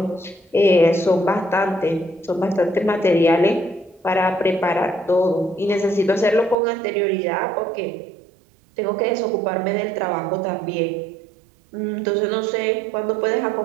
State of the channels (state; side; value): drops out; left; at 6.6 s